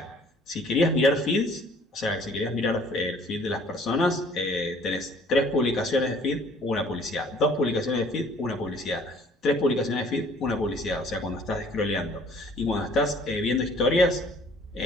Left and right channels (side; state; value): both; normal; correlation 0.56